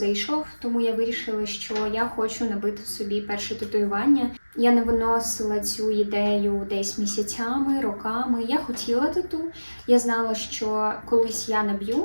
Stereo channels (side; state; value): both; inverted; correlation -1.00